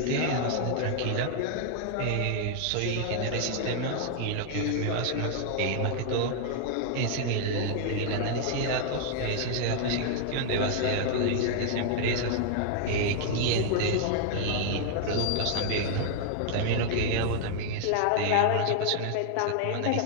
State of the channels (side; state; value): both; different; correlation 0.00